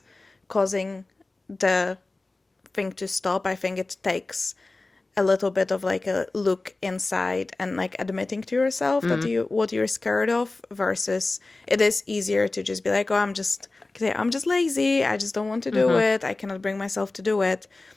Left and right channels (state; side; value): quieter; right; 3.2 dB